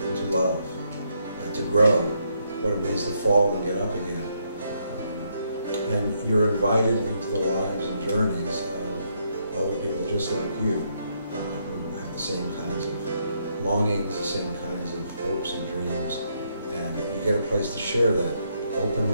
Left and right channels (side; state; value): both; inverted; correlation -0.76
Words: love, to grow, what it means to fall and get up again. And you're invited into the lives and journeys of other people just like you, who have the same kinds of longings, the same kinds of hopes and dreams, and you get a place to share that